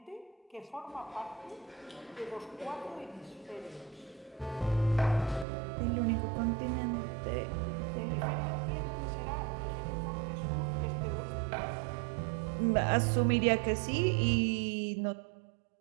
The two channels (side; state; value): left; drops out; at 5.5 s